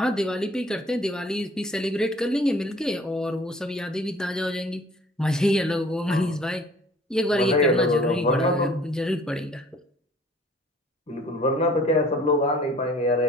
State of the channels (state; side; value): normal; both; correlation 0.52